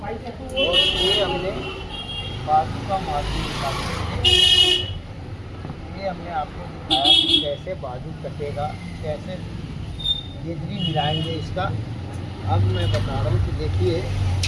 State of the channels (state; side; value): identical; both; correlation 1.00